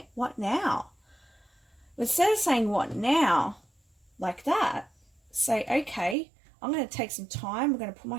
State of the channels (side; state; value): left; drops out; at 6.2 s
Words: What now? Instead of saying what now like that, say, okay, I'm going to take some time. I'm going to put